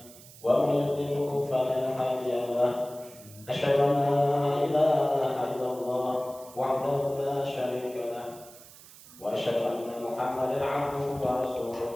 wa may yudlilhu fala hadiya lahu. Asyhadu an la ilaha illallah wahdahu la syarika lahu wa asyhadu anna Muhammadan 'abduhu wa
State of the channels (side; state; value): right; noise; hiss, 20 dB below the sound